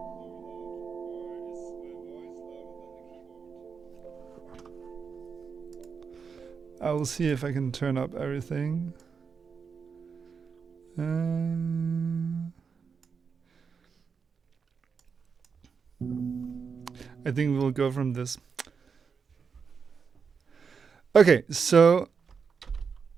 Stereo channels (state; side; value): quieter; left; 5.9 dB